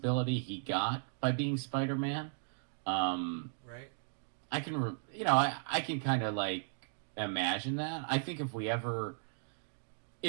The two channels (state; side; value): silent; left; digital silence